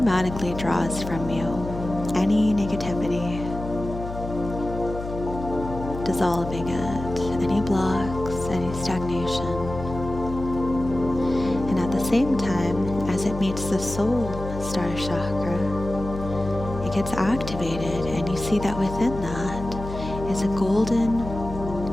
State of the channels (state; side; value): noise; left; hum, 8 dB below the sound